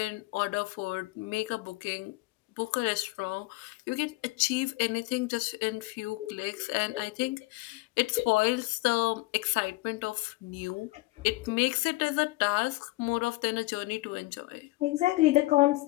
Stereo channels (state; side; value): quieter; right; 21.1 dB